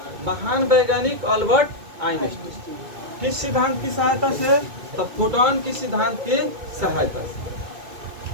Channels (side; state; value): left; late; 2.2 ms